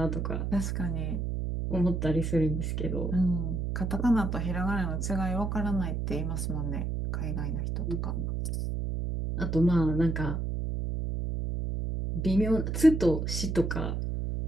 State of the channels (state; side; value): noise; right; hum, 1 dB below the sound